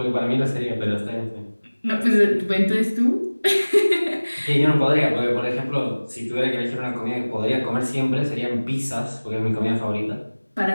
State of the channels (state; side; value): inverted; both; correlation -1.00